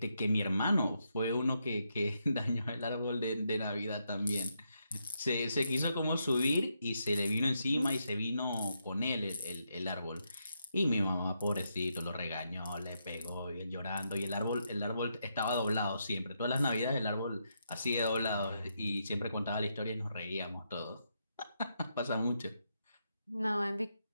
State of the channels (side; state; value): both; inverted; correlation -0.81